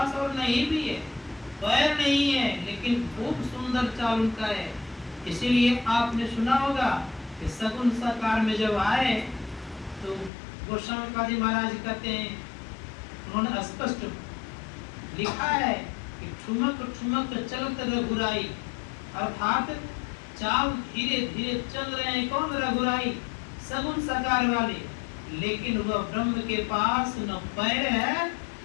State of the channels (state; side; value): drops out; right; at 10.3 s